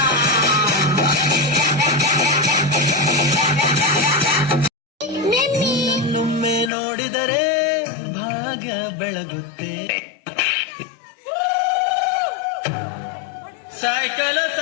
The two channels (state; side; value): drops out; right; at 6.7 s